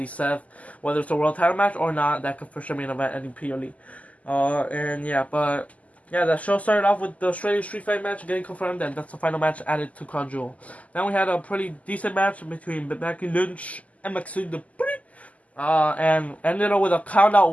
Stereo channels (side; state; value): right; late; 0.072 ms